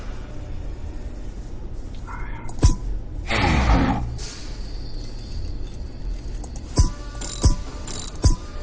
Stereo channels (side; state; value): both; identical; correlation 1.00